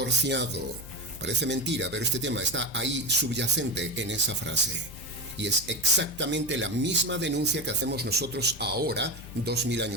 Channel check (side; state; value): left; noise; hum, 16 dB below the sound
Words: Parece mentira, pero este tema está ahí subyacente en esa frase. Y es exactamente la misma denuncia que hacemos nosotros ahora, 2000